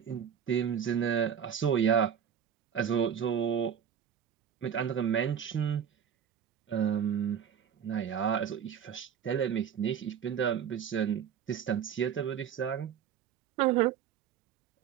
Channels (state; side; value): quieter; left; 8.3 dB